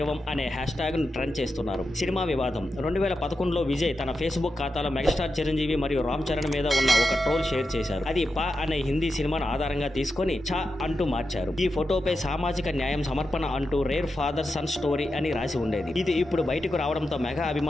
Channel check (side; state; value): both; normal; correlation 0.89